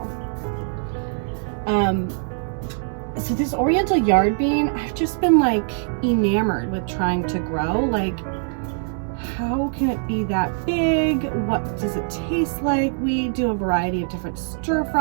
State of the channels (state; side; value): silent; left; digital silence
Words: So this Oriental Yard Bean, I've just been like enamored with trying to grow. Like, how can it be that big? What does it taste like? We do a variety of different stir